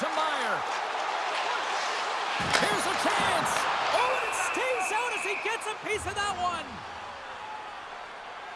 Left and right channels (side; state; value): both; identical; correlation 1.00